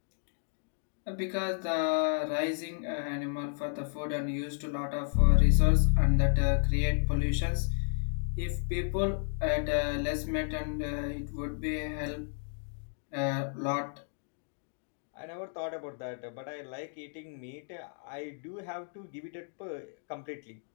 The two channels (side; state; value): right; silent; digital silence